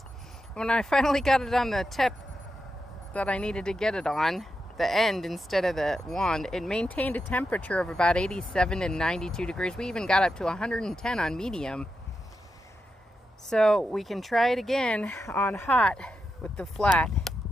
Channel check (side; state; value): both; normal; correlation 0.87